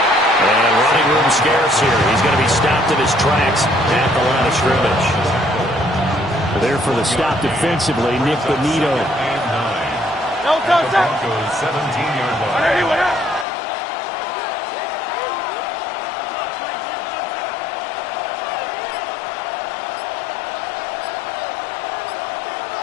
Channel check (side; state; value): right; drops out; at 13.5 s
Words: And running room scarce here. He's going to be stopped in his tracks at the line of scrimmage. There for the stop defensively, Nick Bonito. Broncos 17-yard line.